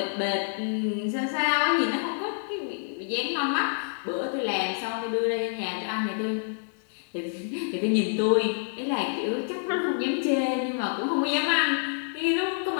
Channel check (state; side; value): silent; right; digital silence